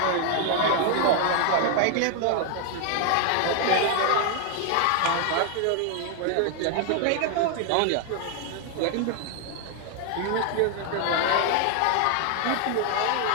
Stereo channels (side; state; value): both; different; correlation 0.00